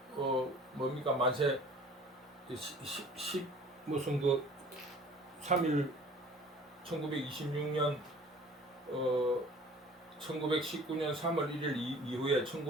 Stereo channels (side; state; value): both; normal; correlation 0.48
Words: 뭡니까 만세 무슨 그 3일 1926년 1919년 3월 1일 이후에